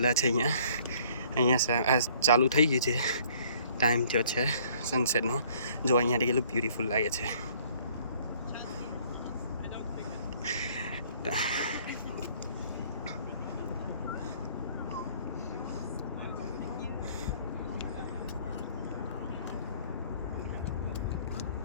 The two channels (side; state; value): both; inverted; correlation -0.58